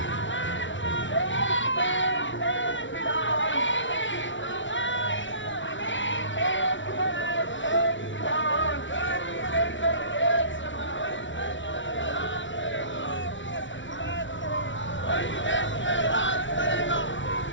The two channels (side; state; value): right; late; 0.55 ms